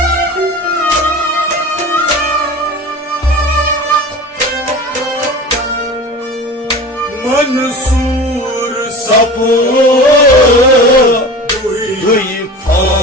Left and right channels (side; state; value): both; normal; correlation 0.35